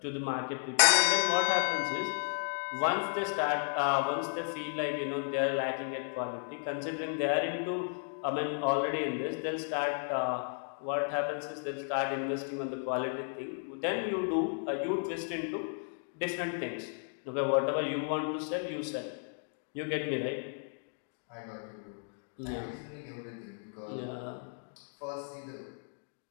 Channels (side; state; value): right; silent; 55 dB below the other